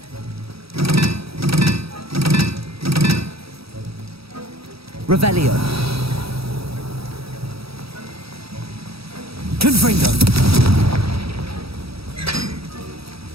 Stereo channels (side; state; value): left; late; 0.77 ms